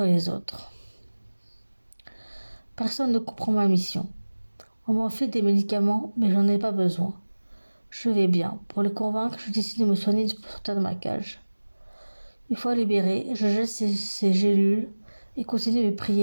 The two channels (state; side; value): inverted; both; correlation -1.00